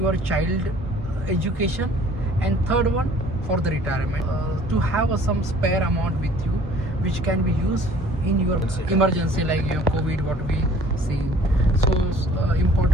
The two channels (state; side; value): normal; both; correlation 0.53